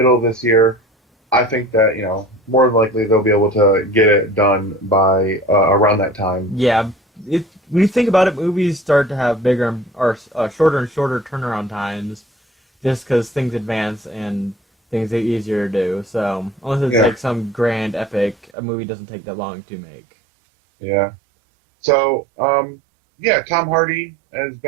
of this year, I think that, more than likely they'll be able to get it done by around that time. Yeah, when you think about it, movies start to have bigger or shorter and shorter turnaround times, just because things advance and things get easier to do. So unless it's Yeah, like some grand epic, a movie doesn't take that long to make. yeah. So, yeah, Tom Hardy as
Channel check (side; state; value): left; drops out; at 18.5 s